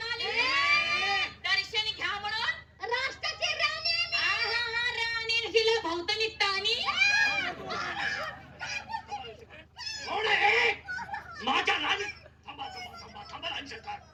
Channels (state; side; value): identical; both; correlation 1.00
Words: आली दर्शन घ्या म्हणून? राष्ट्राची राणी राणी हिला भोवतणी ताणी. कोण आहे? माझ्या राणी थांबा थांबा थांबा थांबा राणी सरकार,